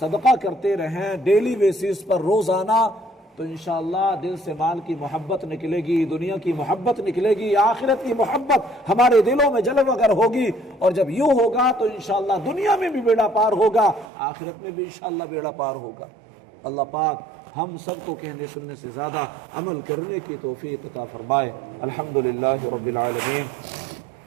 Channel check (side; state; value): left; drops out; at 14.1 s